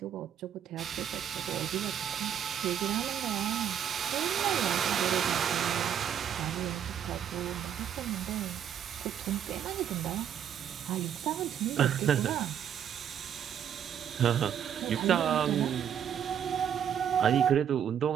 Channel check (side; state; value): left; quieter; 9.1 dB